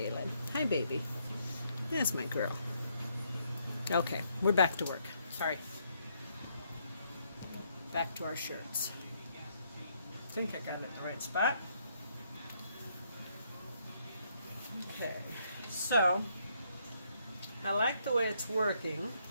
Hi, baby. That's my girl. Okay, we're back to work. Sorry. Back to our shirts. I think I got it in the right spot. Okay, so I like the way it's working.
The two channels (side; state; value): both; inverted; correlation -0.72